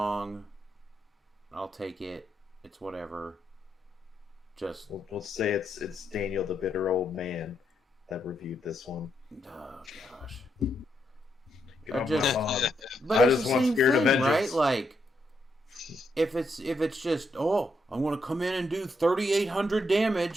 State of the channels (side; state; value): both; normal; correlation 0.79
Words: I'll take it. It's whatever. Just We'll say it's Daniel, the bitter old man, that reviewed this one. oh gosh. Get off my lawn. But I it's just the want same Spirit of thing, right? Vengeance. Like if it's just I'm gonna come in and do 3,800